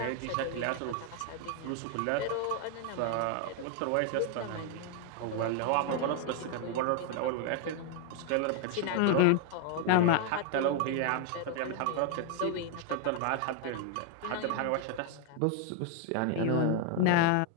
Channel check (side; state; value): both; different; correlation 0.00